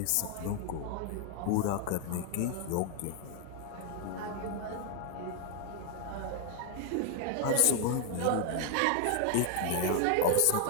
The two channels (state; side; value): different; both; correlation 0.00